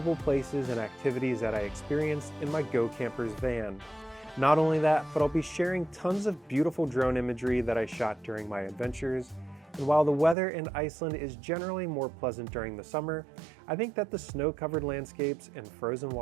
places and activities that I experienced in my Go Campers van. Not only that, but I'll be sharing tons of beautiful drone imagery that I shot during my adventures. And while the weather in Iceland is generally more pleasant during the summer, I think that the snow-covered landscapes and frozen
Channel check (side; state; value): left; drops out; at 10.4 s